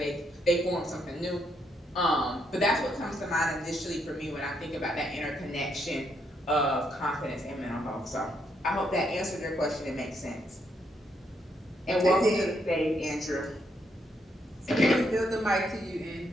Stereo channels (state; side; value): normal; both; correlation 0.76